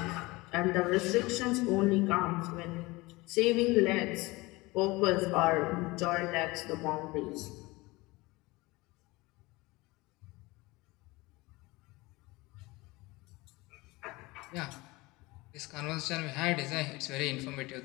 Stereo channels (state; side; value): quieter; right; 22.3 dB